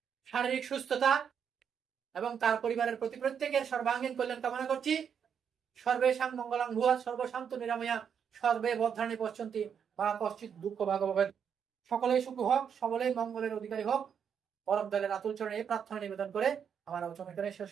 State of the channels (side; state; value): left; quieter; 7.6 dB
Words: শারীরিক সুস্থতা এবং তার পরিবারের প্রত্যেকের সর্বাঙ্গীন কল্যাণ কামনা করছি। সর্বেষাং মঙ্গলাং ভুয়া সর্বশান্ত নিরাময়া সর্বে বদ্ধানি পশ্যন্তি বা কশ্চিৎ দুঃখ ভাগবত। সকলেই সুখ হোক, সকলেই মঙ্গলের অধিকারী হোক, পরম দয়ালের আতুল চরণে এই প্রার্থনা নিবেদন করে আমার আলোচনা করে শেষ